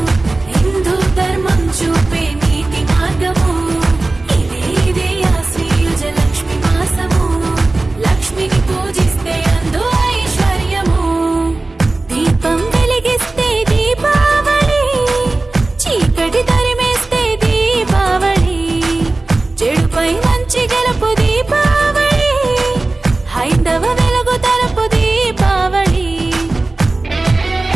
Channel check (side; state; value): left; quieter; 3.1 dB